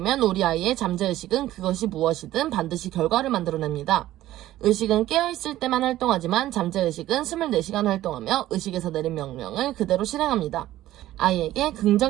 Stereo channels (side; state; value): left; quieter; 14.5 dB